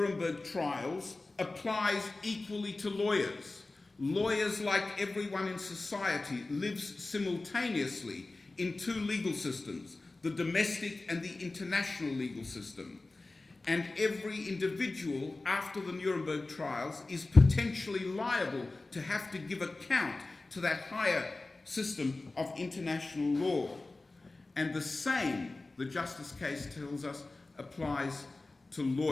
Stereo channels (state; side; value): quieter; right; 3.2 dB